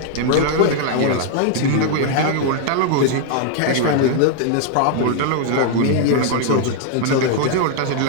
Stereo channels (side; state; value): both; different; correlation 0.00